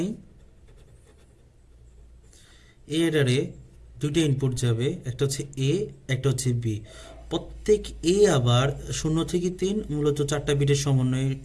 এই অ্যাডারে 2টা ইনপুট যাবে, একটা হচ্ছে এ, একটা হচ্ছে বি। প্রত্যেক এ আবার 0 থেকে 3 মূলত 4টা বিটের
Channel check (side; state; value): both; identical; correlation 1.00